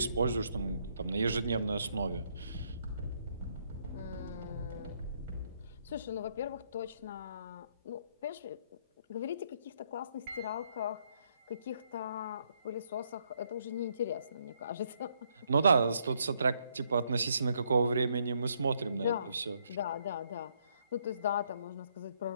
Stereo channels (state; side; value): inverted; both; correlation -0.72